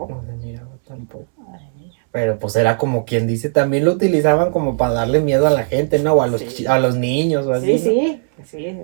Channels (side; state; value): left; silent; 68 dB below the other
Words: No se miraba tampoco. Ay, Pero pues era como quien dice, también lo utilizaban como para darle miedo a la gente, ¿no? O a los, Sí. a los niños o así, sí, ¿no? sí,